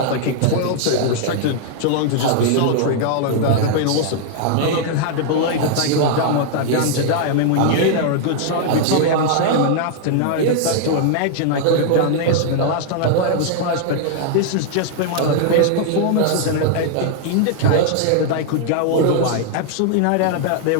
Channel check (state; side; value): different; both; correlation 0.00